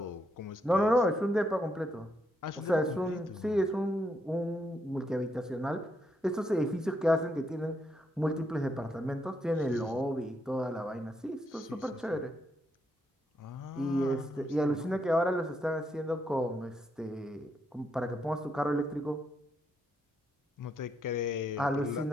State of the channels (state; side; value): normal; both; correlation 0.78